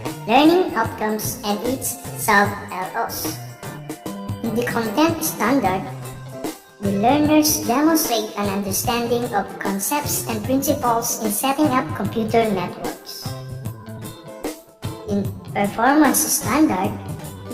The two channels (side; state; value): both; identical; correlation 1.00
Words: learning outcomes, and its sub-LOs. In the content standard, the learners demonstrate an understanding of concepts and principles in setting up computer networks. In performance standard,